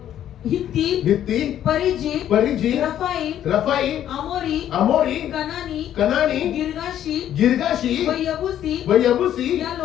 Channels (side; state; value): right; quieter; 11.0 dB